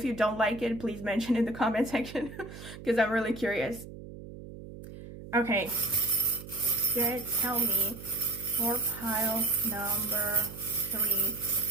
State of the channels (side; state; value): right; noise; hum, 13 dB below the sound